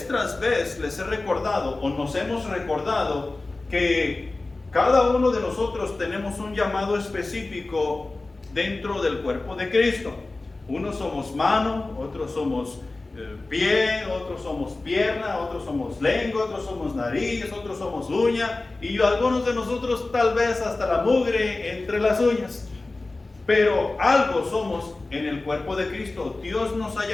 tras vez les he recordado, o nos hemos recordado, que cada uno de nosotros tenemos un llamado específico dentro del cuerpo de Cristo. Unos somos mano, otros somos pie, otros somos pierna, otros somos lengua, otros somos nariz, otros somos uña, y algunos de nosotros tal vez hasta la mugre entre las uñas. Pero algo somos en el cuerpo de Cristo. Dios nos ha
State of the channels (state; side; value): quieter; right; 3.2 dB